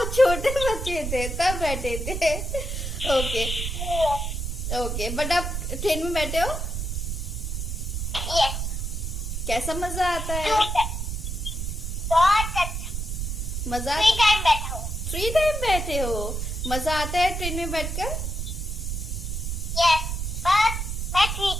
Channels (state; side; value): noise; right; rumble, 3 dB below the sound